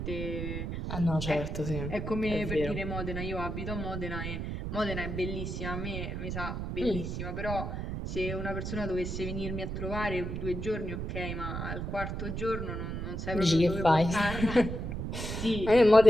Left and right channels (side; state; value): right; noise; rumble, 4 dB below the sound